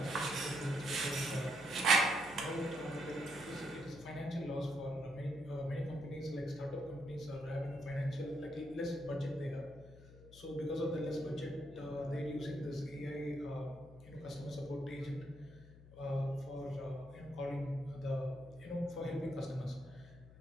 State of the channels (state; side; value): noise; left; hum, 19 dB below the sound